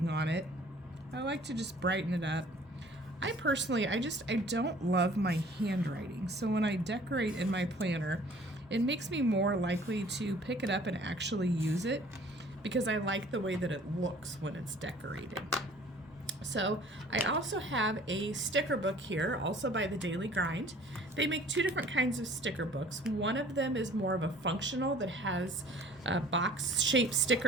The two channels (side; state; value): both; normal; correlation 0.52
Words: on it. I like to just brighten it up. I personally, I don't love my handwriting. So when I decorate in my planner, it makes me more likely to pick it up and actually use it because I like the way that it looks when it's decorated. So I also have a sticker book here, also by the Daily Grind. They make two different kinds of sticker books. One of them is more of a functional that has box-shaped